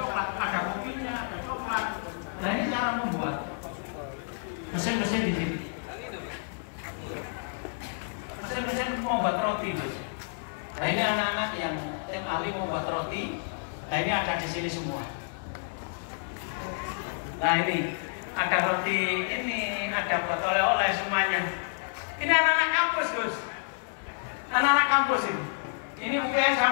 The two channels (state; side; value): silent; right; 58 dB below the other